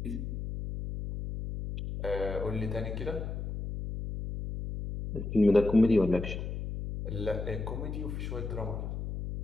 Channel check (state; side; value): noise; left; hum, 5 dB below the sound